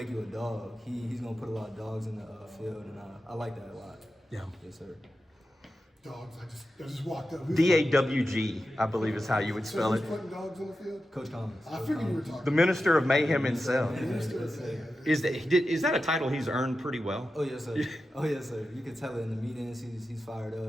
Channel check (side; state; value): both; normal; correlation 0.91